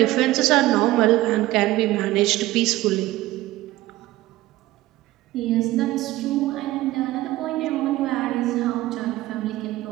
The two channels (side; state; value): left; quieter; 16.7 dB